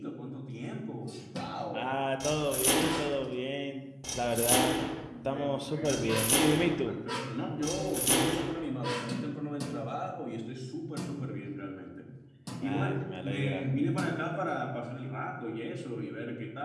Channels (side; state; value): both; identical; correlation 1.00